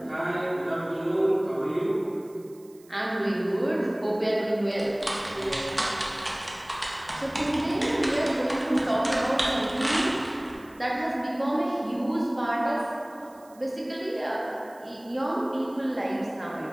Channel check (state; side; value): noise; right; hiss, 27 dB below the sound